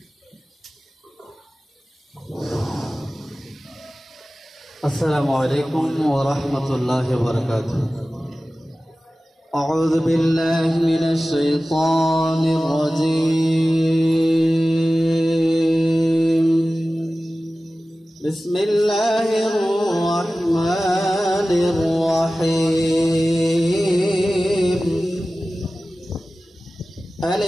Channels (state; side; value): normal; both; correlation 0.96